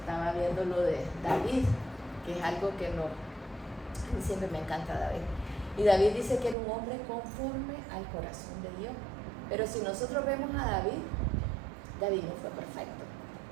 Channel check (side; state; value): left; drops out; at 6.6 s